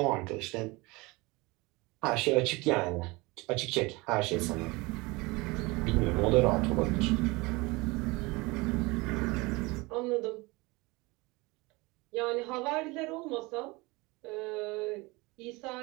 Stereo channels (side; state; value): left; quieter; 24.0 dB